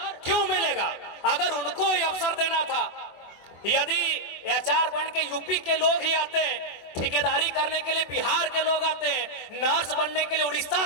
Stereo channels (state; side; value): late; right; 24 ms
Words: क्यों मिलेगा? अगर उनको ये अवसर देना था, यदि एचआर बन के यूपी के लोग ही आते, ठेकेदारी करने के लिए बिहार के लोग आते, नर्स बनने के लिए उड़ीसा